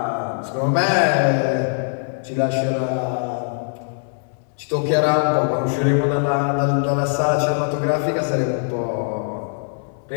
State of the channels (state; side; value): silent; right; digital silence